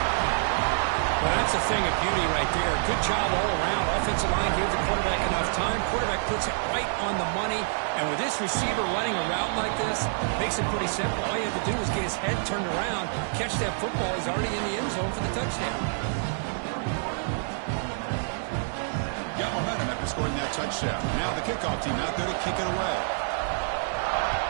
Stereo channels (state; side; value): silent; left; digital silence